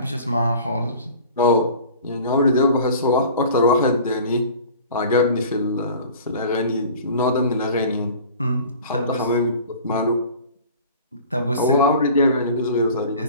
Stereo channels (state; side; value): inverted; both; correlation -0.43